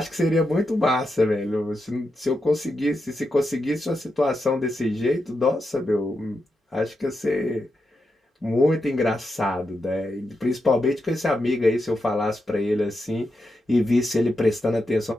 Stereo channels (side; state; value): both; normal; correlation 0.86